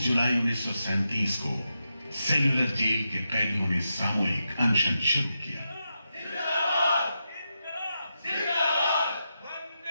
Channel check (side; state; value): both; inverted; correlation -0.87